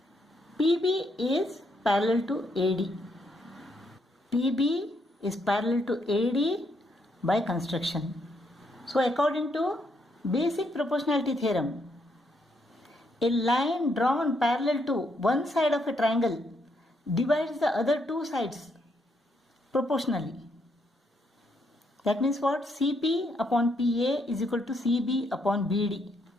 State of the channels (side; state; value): both; normal; correlation 0.75